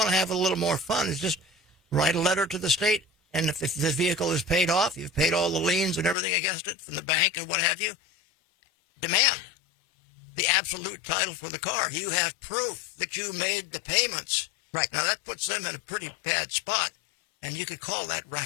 to have a little more fun, is just write a letter to the state, and if the vehicle is paid off, you've paid all the liens and everything against it from the bank and what have you, demand the absolute title for the car. You have proof that you made the payments. Right. Now that puts them in a pretty bad spot, and you could call that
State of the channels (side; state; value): right; drops out; at 6.2 s